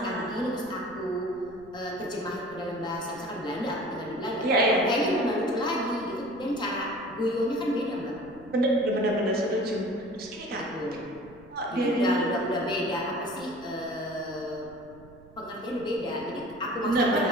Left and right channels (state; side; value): noise; right; rumble, 23 dB below the sound